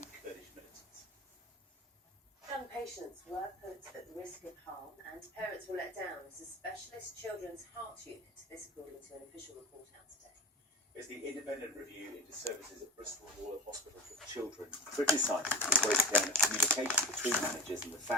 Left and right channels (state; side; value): normal; both; correlation 0.30